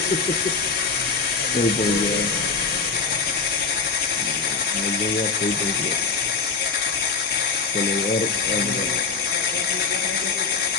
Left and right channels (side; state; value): right; quieter; 4.7 dB